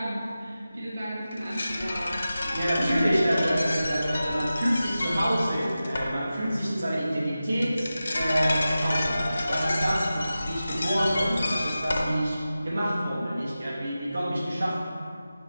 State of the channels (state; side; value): inverted; both; correlation -0.94